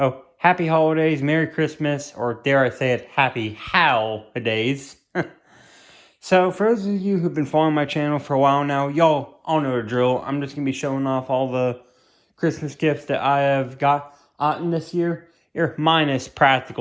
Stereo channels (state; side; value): identical; both; correlation 1.00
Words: happy holidays, Merry Christmas, or dare I say it, happy HOWLidays. So, for those of you who've been following my channel for a while now, y'all all know the drill. I'm just going to be showing off all the Christmas gifts that I have gotten this year, minus